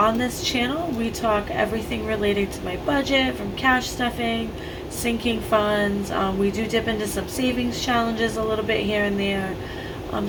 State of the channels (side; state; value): both; identical; correlation 1.00